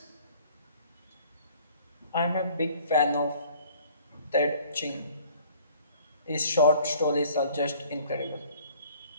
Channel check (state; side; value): inverted; both; correlation -0.54